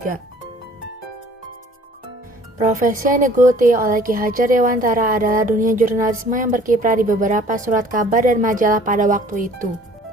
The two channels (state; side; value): normal; both; correlation 0.53